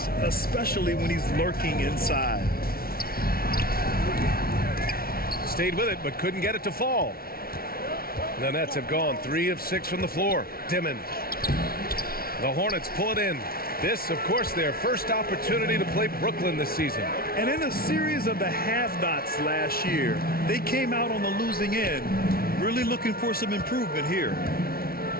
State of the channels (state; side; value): late; right; 0.44 ms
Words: especially when he's lurking inside. Stayed with it, but couldn't get it to fall. The Nets have gone 3 of 6 from the floor. Dimon. The Hornets pull it in. This, of course, their first opportunity to play Brooklyn this season. And in a series of the have-nots last year, they came out on the losing end, really looking for some improvement here.